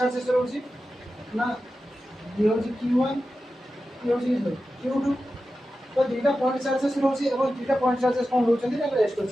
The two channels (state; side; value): normal; both; correlation 0.92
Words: रहउची ना ये होची q1 ये होची q2 तो दीटा पॉइंट चार्जेस रहउची एवं दीटा पॉइंट चार्जेस कोन रहउचंदी ना रेस्ट